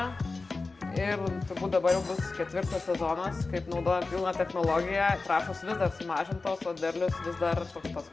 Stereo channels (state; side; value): quieter; right; 3.8 dB